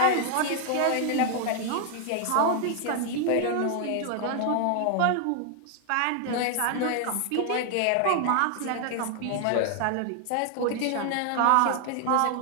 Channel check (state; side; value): different; both; correlation 0.00